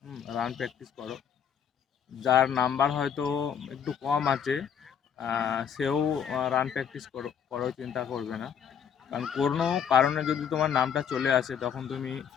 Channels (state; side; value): quieter; right; 8.0 dB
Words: রান প্র্যাকটিস করো। যার নাম্বার হয়তো একটু কম আছে সেও রান প্র্যাকটিস করো, চিন্তা করবে না। কারণ কোনো কারণে যদি তোমার নামটা চলে আসে তখন তুমি